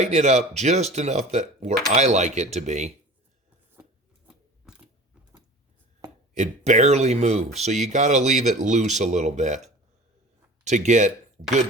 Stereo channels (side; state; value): both; normal; correlation 0.40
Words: it up just enough that where I like it to be, it barely moves. So you got to leave it loose a little bit to get